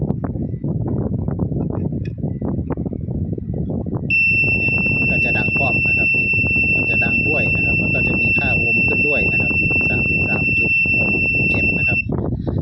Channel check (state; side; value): identical; both; correlation 1.00